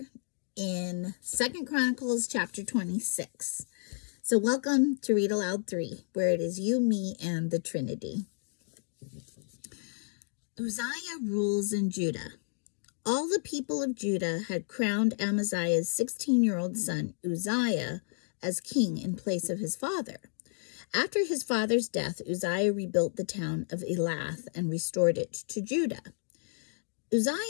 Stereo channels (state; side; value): silent; right; digital silence